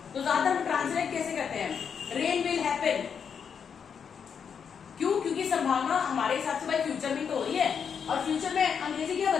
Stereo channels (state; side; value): quieter; right; 6.9 dB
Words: तो ज्यादातर हम ट्रांसलेट कैसे करते हैं? Rain will happen. क्यों? क्योंकि संभावना हमारे हिसाब से भाई फ्यूचर में तो हो रही है, और फ्यूचर में अंग्रेजी क्या